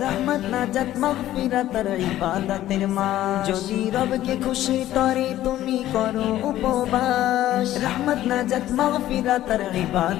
রহমত নাজাত মাগফিরাতের ইবাদতের মাস যদি রবকে খুশি করে তুমি করো উপবাস রহমত নাজাত মাগফিরাতের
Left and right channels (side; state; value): right; quieter; 13.7 dB